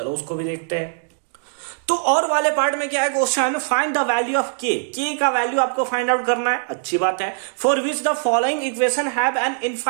उसको भी देखते हैं। तो और वाले पार्ट में क्या है, question find the value of के का वैल्यू आपको फाइंड आउट करना है। अच्छी बात है। For which the following equation have an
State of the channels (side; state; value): left; silent; digital silence